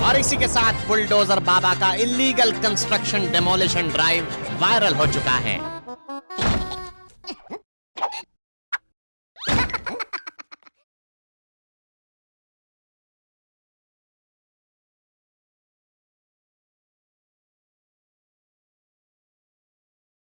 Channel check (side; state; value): both; inverted; correlation -1.00